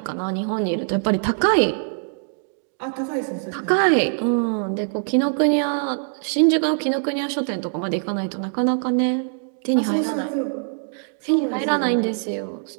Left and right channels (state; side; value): silent; left; digital silence